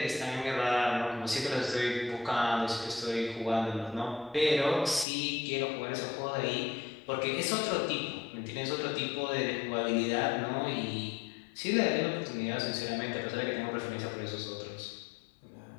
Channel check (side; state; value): right; drops out; at 5.1 s